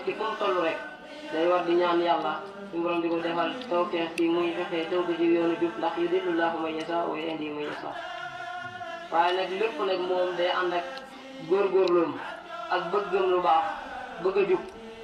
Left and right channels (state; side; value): identical; both; correlation 1.00